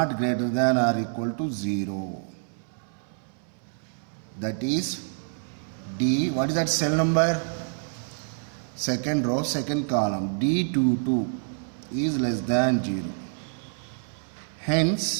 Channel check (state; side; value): silent; left; 60 dB below the other